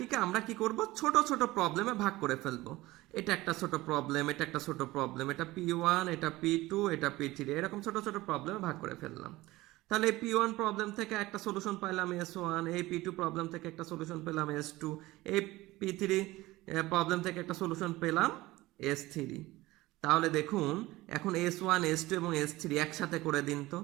আমরা কি করব, ছোট ছোট প্রবলেমে ভাগ করে ফেলবো। এটা একটা ছোট প্রবলেম, এটা একটা ছোট প্রবলেম, এটা P1, এটা P2, এটা P3, এরকম ছোট ছোট প্রবলেমে ভাগ করে ফেললাম। তাহলে এই P1 প্রবলেম থেকে একটা সলিউশন পাইলাম S1, এই P2 প্রবলেম থেকে একটা সলিউশন পেলাম S2, এই P3 প্রবলেম থেকে একটা সলিউশন পেলাম S3। তাহলে দেখুন এখন S1, S2 এবং S3 একসাথে করে দিন তো,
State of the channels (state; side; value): quieter; left; 18.8 dB